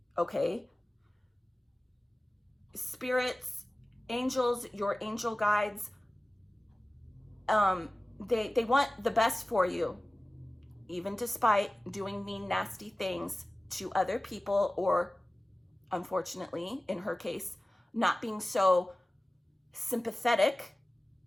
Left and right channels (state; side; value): normal; both; correlation 0.97